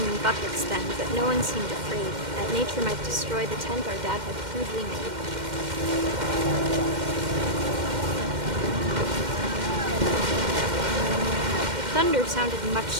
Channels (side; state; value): left; late; 2.1 ms